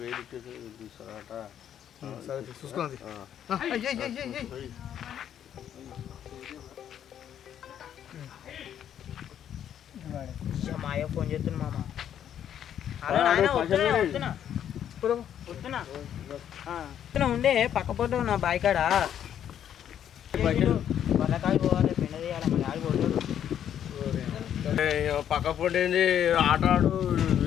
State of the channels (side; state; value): right; quieter; 9.8 dB